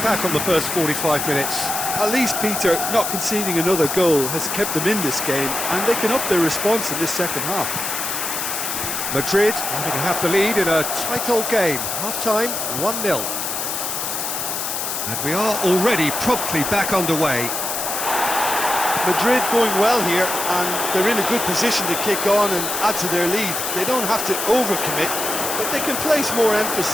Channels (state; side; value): noise; left; hiss, 3 dB below the sound